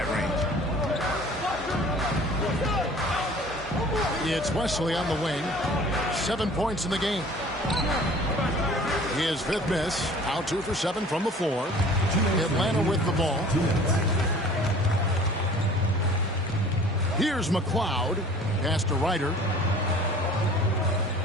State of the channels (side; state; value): both; normal; correlation 0.48